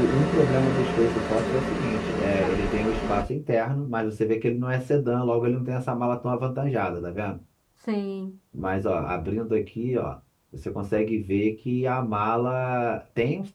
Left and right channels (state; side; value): identical; both; correlation 1.00